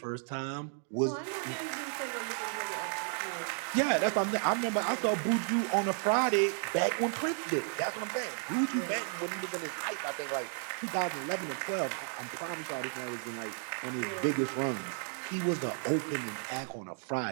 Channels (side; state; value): left; silent; 56 dB below the other